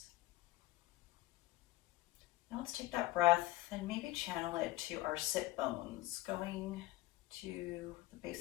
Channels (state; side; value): quieter; right; 17.7 dB